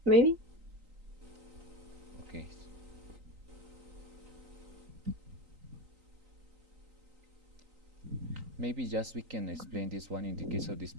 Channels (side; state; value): left; late; 3.9 ms